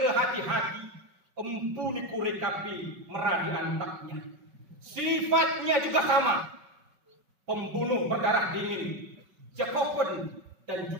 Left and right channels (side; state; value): left; late; 5.3 ms